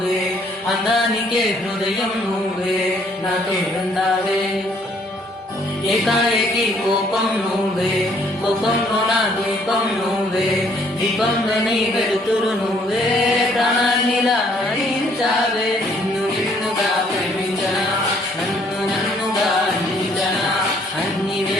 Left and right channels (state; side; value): normal; both; correlation 0.64